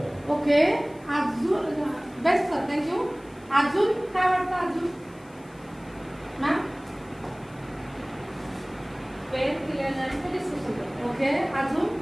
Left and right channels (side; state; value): left; noise; hiss, 28 dB below the sound